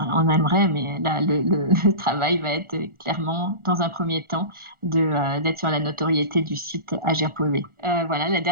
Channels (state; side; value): late; left; 1.4 ms